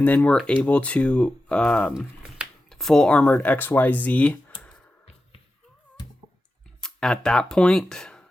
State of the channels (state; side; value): normal; both; correlation 0.92